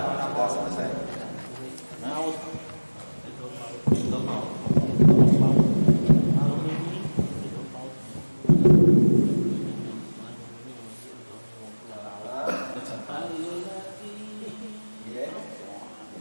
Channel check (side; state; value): both; inverted; correlation -1.00